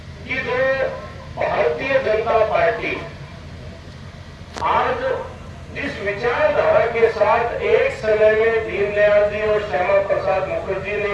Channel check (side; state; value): both; identical; correlation 1.00